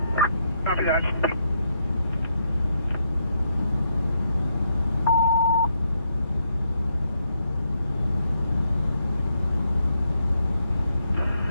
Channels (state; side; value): inverted; both; correlation -0.77